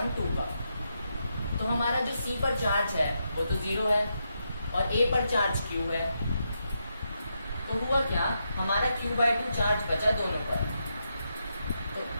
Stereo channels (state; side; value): inverted; both; correlation -0.83